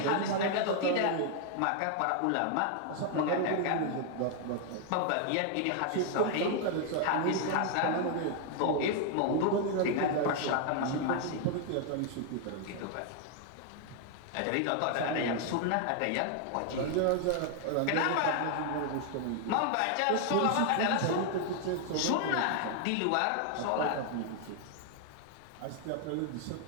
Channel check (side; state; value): both; different; correlation 0.00